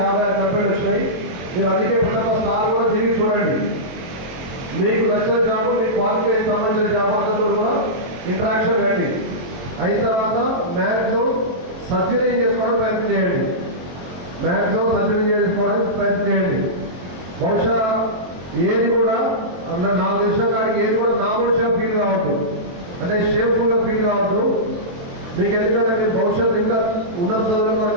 56 కంపెనీలు వచ్చినాయి. మీరు అందుకే ప్రతి ఒక్క స్టార్ కూడా తిరిగి చూడండి. మీకు నచ్చిన జాబ్ మీ క్వాలిఫికేషన్ సంబంధించిన జాబ్ అందరితో కూడా ఇంటరాక్షన్ రండి. అయిన తర్వాత మ్యాక్సిమం సర్జరీ చేసుకోవడానికి ప్రయత్నం చేయండి. మ్యాక్సిమం సర్జరీ చేసుకోవడానికి ప్రయత్నం చేయండి. బహుశా ఏది కూడా నాకు తెలిసిన కాడికి ఏది కూడా నామోషిగా ఫీల్ కావద్దు, అంటే షేమ్ఫుల్గా ఫీల్ కావద్దు. మీకు ఎందుకంటే మీరు భవిష్యత్తు ఇంకా ఉన్నత చదువులు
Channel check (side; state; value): left; late; 22 ms